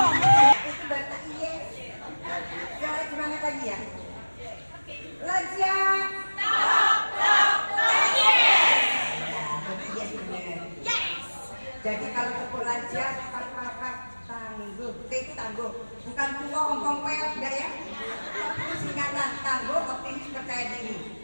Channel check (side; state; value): both; inverted; correlation -1.00